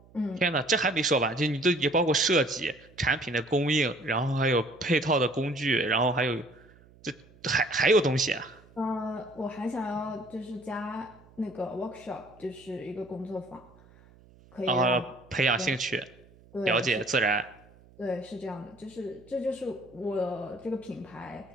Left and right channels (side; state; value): right; noise; hum, 26 dB below the sound